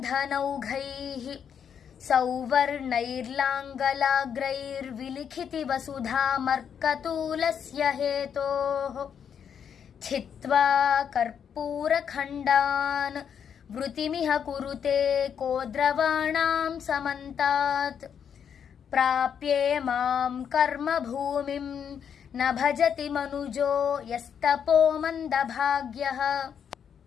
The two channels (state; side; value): quieter; right; 7.8 dB